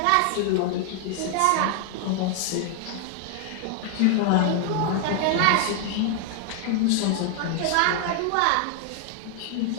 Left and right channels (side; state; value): both; different; correlation 0.00